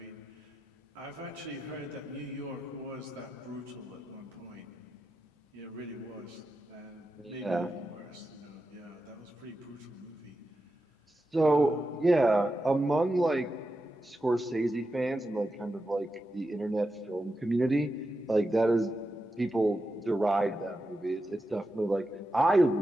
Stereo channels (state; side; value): normal; both; correlation 0.89